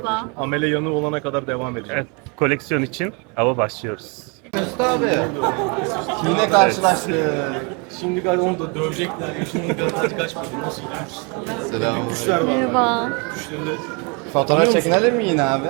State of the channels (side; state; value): left; quieter; 32.7 dB